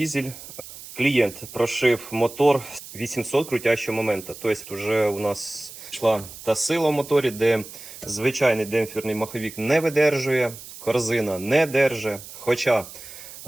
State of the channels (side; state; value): right; noise; hiss, 15 dB below the sound